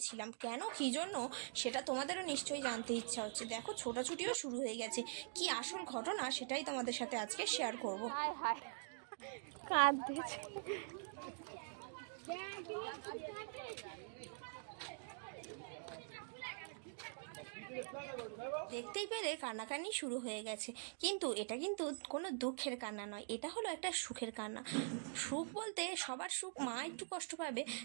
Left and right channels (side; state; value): left; silent; digital silence